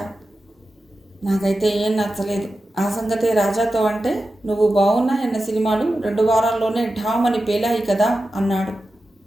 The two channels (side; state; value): both; normal; correlation 0.92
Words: నాకైతే ఏం నచ్చలేదు. ఆ సంగతే రాజాతో అంటే నువ్వు బాగున్నాయన్న సినిమాలు 2 వారాల్లోనే ఢామని పేలాయి కదా అన్నాడు.